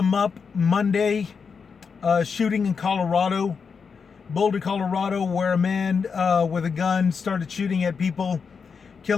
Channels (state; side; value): quieter; right; 5.7 dB